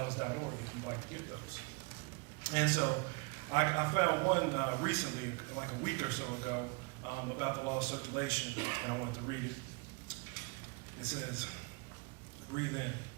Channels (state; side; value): quieter; left; 31.0 dB